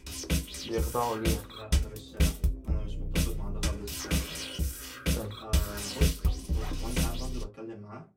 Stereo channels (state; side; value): identical; both; correlation 1.00